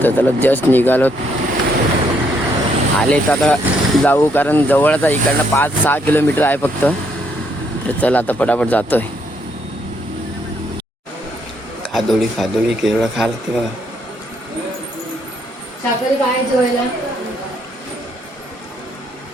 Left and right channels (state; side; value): normal; both; correlation 0.72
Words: तर त्याला जस्ट निघालो आले, तर आता जाऊ, कारण जवळच आहे, इकडनं 5-6 किलोमीटर आहे फक्त. तर चला आता पटापट जातोय. खादोळी केवढं खाल ते बघा. साखर काय जेवायला